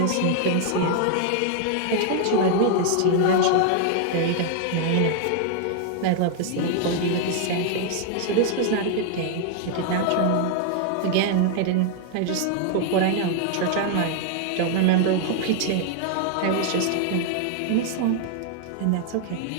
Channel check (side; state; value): both; different; correlation 0.00